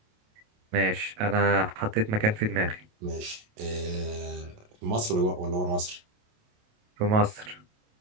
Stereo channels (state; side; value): late; left; 28 ms